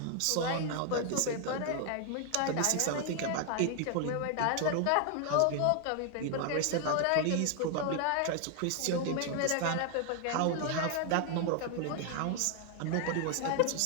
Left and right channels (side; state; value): both; different; correlation 0.00